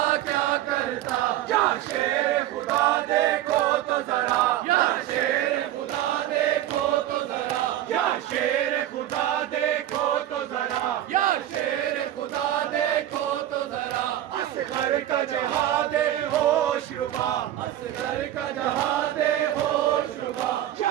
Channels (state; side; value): quieter; left; 12.8 dB